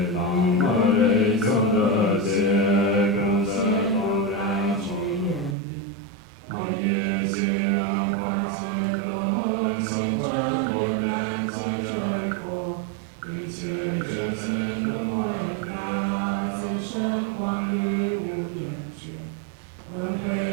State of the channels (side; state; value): left; drops out; at 5.6 s